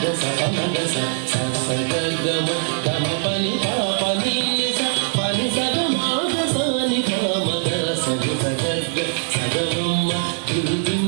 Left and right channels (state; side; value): silent; left; digital silence